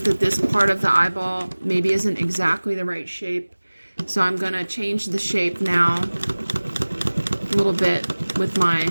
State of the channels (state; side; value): inverted; both; correlation -1.00